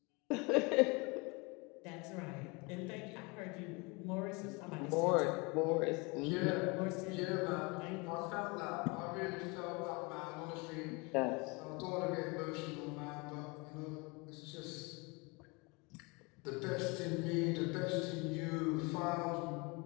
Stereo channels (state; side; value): quieter; right; 28.1 dB